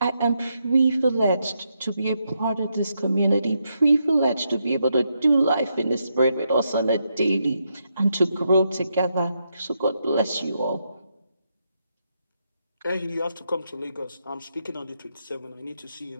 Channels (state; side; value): inverted; both; correlation -0.81